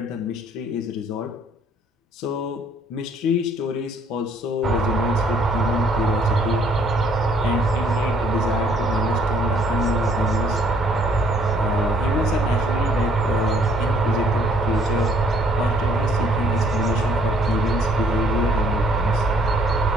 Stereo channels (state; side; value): normal; both; correlation 0.63